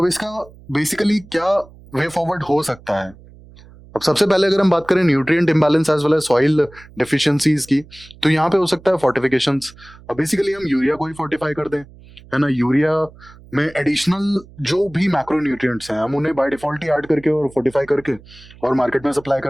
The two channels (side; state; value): right; noise; hum, 22 dB below the sound